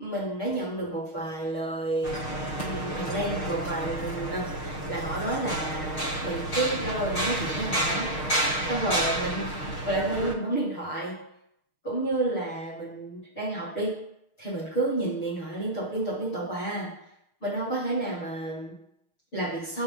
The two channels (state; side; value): late; right; 6.5 ms